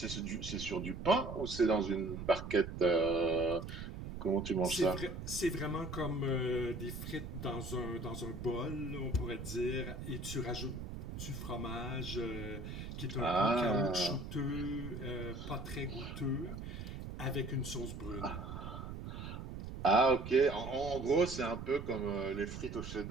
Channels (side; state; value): right; noise; rumble, 8 dB below the sound